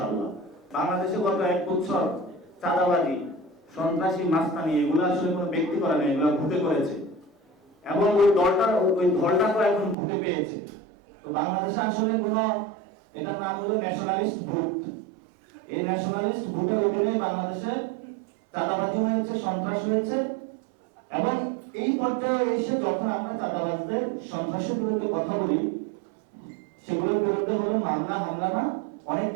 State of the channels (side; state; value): left; drops out; at 10.0 s